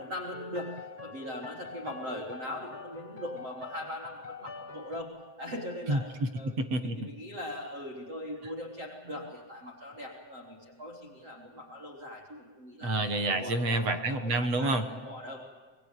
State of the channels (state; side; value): late; left; 7.8 ms